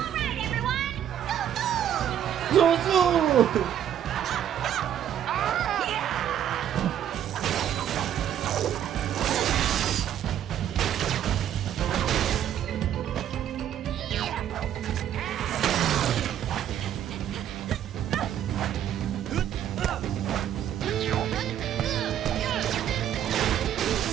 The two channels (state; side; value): quieter; left; 10.3 dB